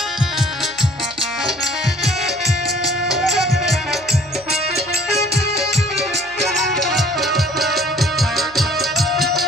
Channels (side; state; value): right; noise; hum, 25 dB below the sound